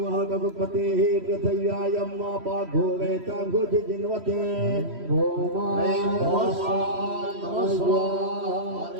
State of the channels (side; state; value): left; late; 3.1 ms